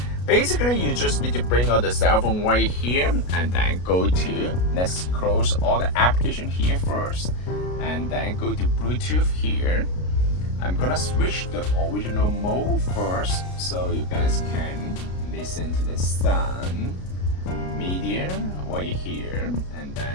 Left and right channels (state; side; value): late; right; 33 ms